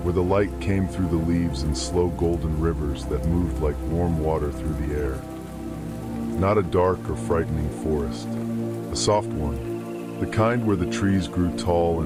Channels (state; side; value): identical; both; correlation 1.00